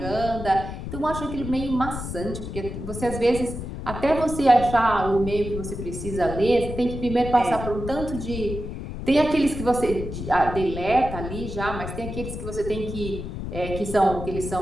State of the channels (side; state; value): left; noise; rumble, 7 dB below the sound